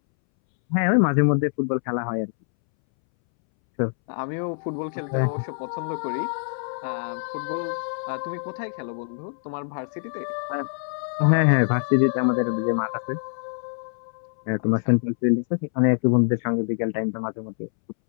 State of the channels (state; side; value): silent; right; 62 dB below the other